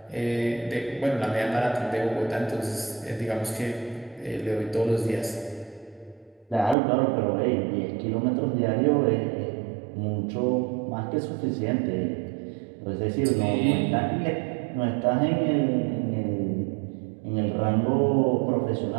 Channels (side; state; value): left; drops out; at 6.8 s